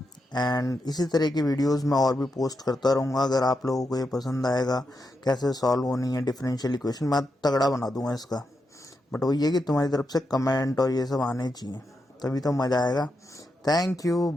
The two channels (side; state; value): both; normal; correlation 0.85